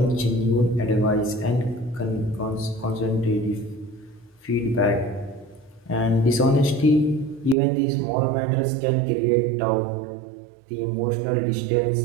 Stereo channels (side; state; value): left; drops out; at 7.6 s